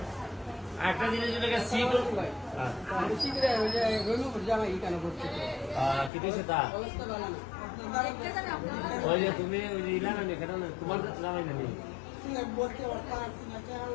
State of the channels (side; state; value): right; drops out; at 6.1 s